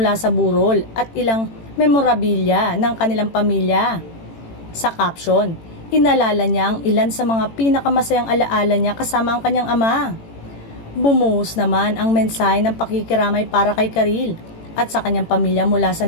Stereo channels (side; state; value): right; late; 18 ms